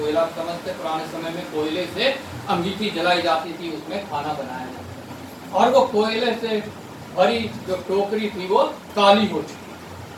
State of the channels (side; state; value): both; identical; correlation 1.00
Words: समझते, पुराने समय में कोयले से अंगीठी जलाई जाती थी, उसमें खाना बनाया जाता। और वो कोयले से भरी जो टोकरी थी वो काली हो चुकी।